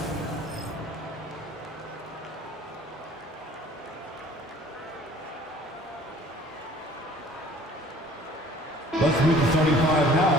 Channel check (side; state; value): both; normal; correlation 0.52